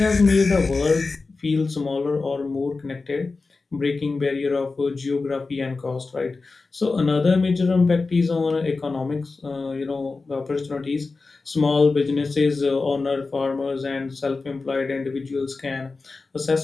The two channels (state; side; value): quieter; right; 3.9 dB